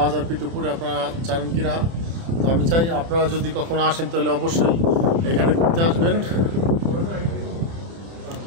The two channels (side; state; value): left; late; 30 ms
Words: ফিট উপরে, আপনারা জানেন কি না। তো আমি চাই আপনারা যদি কখনো আসেন তাহলে অবশ্যই এখানে ঘুরতে আসবেন।